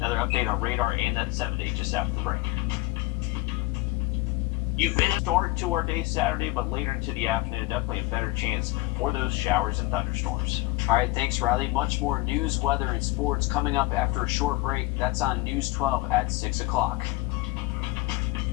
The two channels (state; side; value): quieter; right; 20.4 dB